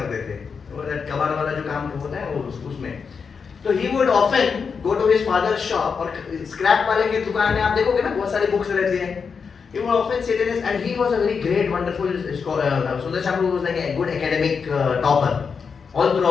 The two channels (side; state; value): right; quieter; 5.8 dB